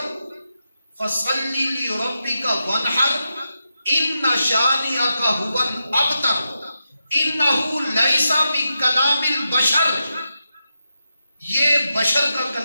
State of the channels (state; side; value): inverted; both; correlation -0.88